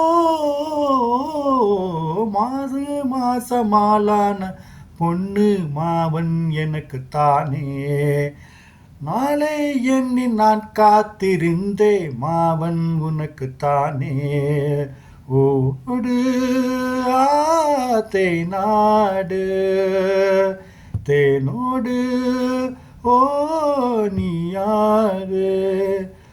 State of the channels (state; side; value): identical; both; correlation 1.00